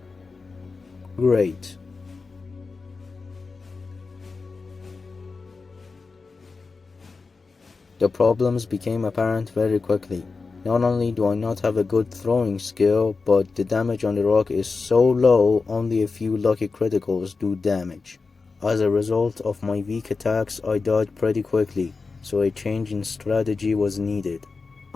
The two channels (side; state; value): right; quieter; 4.3 dB